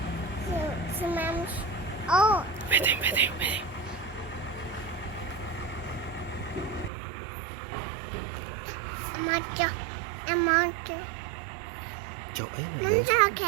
Smash. Oh, Waiting, waiting, waiting. a monster. Chỗ ấy mà. Monster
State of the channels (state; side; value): drops out; left; at 6.9 s